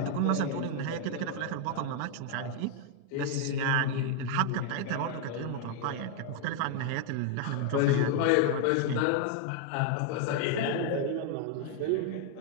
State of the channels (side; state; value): both; different; correlation 0.00